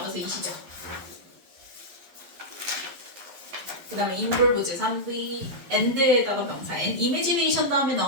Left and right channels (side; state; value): left; late; 11 ms